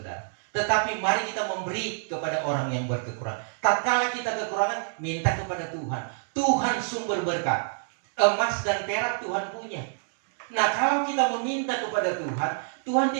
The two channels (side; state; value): left; silent; digital silence